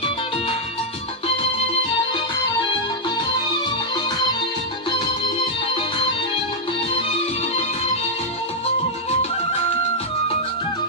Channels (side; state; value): both; normal; correlation -0.05